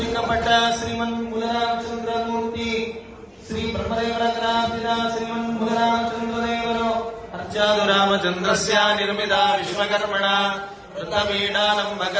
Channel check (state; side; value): identical; both; correlation 1.00